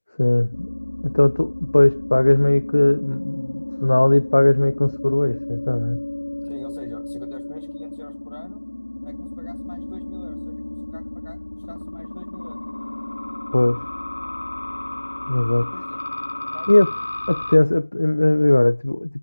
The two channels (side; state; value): both; inverted; correlation -1.00